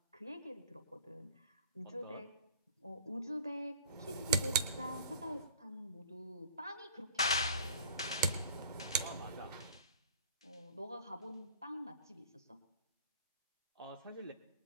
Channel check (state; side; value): inverted; both; correlation -0.44